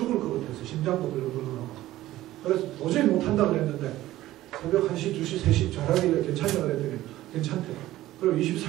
것 같아서 심장도 벌렁벌렁하고 그래서 도저히 못한다고 그랬는데 새벽 1시, 2시, 3시 잘하길래 괜찮냐고 그랬더니 괜찮대. 그리고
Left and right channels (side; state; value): left; quieter; 15.4 dB